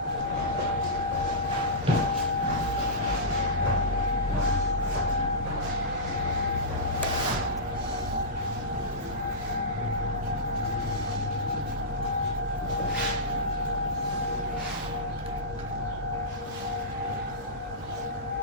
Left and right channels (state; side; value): normal; both; correlation -0.16